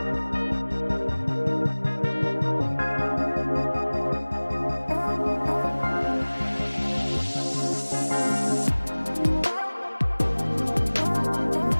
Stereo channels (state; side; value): inverted; both; correlation -1.00